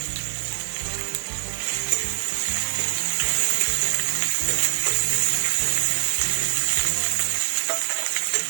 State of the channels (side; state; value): left; silent; digital silence